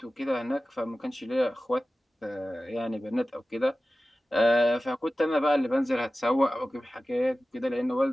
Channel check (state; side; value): normal; both; correlation 0.96